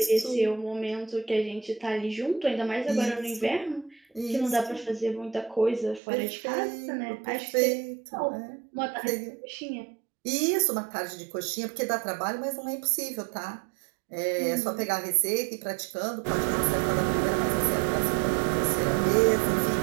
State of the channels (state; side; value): drops out; left; at 6.0 s